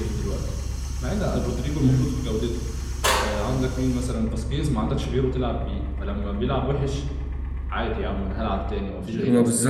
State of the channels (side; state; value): both; identical; correlation 1.00